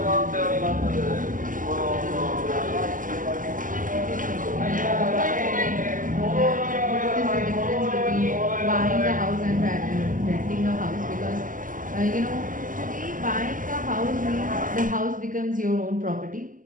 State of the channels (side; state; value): left; late; 0.38 ms